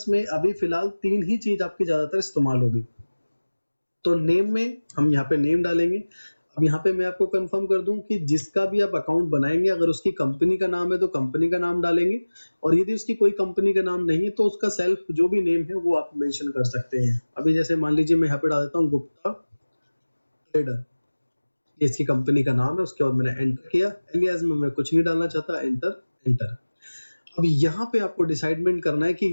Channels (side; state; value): both; inverted; correlation -1.00